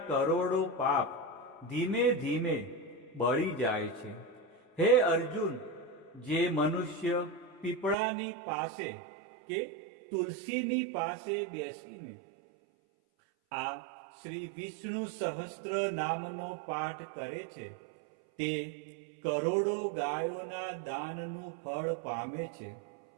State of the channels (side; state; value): left; drops out; at 8.0 s